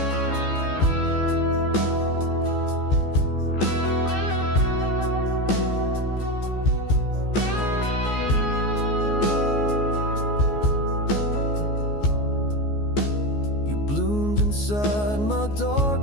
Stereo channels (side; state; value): right; late; 14 ms